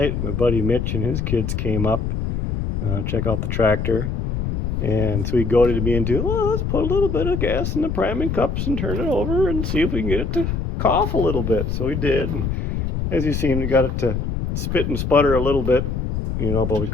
my buddy Mitch and his kids came up, check out the tractor. And so he goaded me into, well, let's put a little bit of gas in the priming cups and turn it over and see if we can get it to cough a little bit. So we did. And as you seen, we got it to spit and sputter a little bit, but we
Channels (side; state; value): left; noise; rumble, 2 dB below the sound